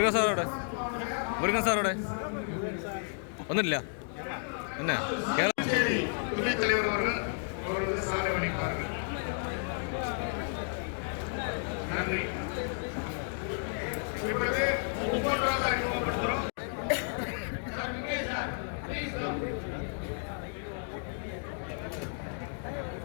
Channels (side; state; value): right; silent; 56 dB below the other